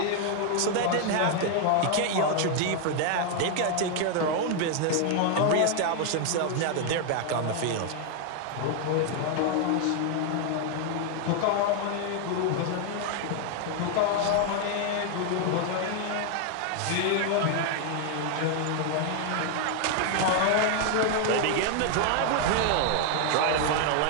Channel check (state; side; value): different; both; correlation 0.00